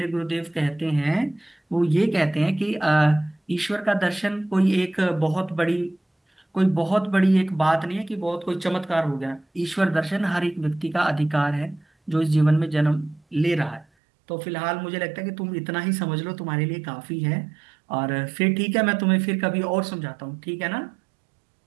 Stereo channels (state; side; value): drops out; left; at 13.9 s